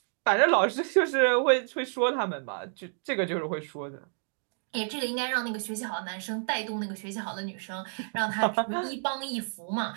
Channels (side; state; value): left; silent; digital silence